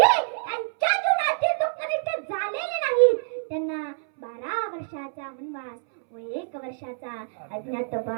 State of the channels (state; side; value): silent; left; 61 dB below the other